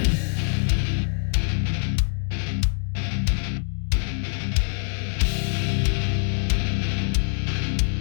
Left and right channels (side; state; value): right; silent; digital silence